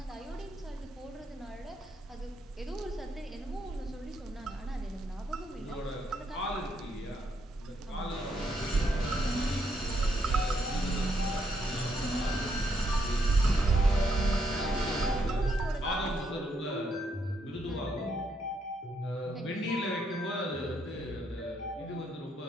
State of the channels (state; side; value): normal; both; correlation 0.76